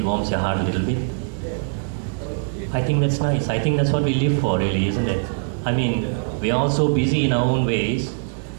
warms your heart a little bit. I think that's nice. I think that's what we live for, really, isn't it? I mean, we're all so busy in our own ways.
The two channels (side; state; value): left; silent; digital silence